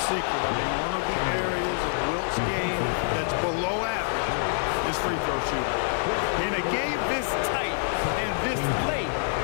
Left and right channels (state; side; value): silent; right; 59 dB below the other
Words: secret. I mean, one of the areas of Wilt's game that's below average is free throw shooting. In a game this tight and this late,